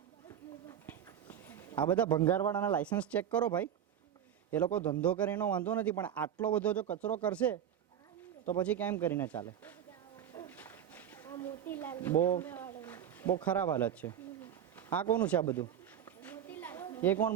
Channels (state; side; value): quieter; left; 9.5 dB